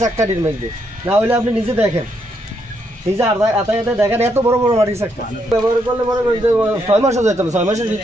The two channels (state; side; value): normal; both; correlation 0.76